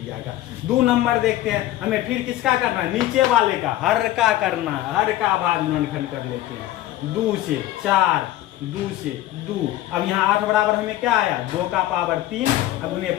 का। 2 नंबर देखते हैं। हमें फिर किसका करना है, नीचे वाले का, हर का करना है। हर का अभाज्य गुणनखंड कर लेते हैं। 2 से 4, 2 से 2। अब यहाँ 8 बराबर हमें क्या आया, 2 का पावर 3 गुने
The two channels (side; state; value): right; quieter; 14.7 dB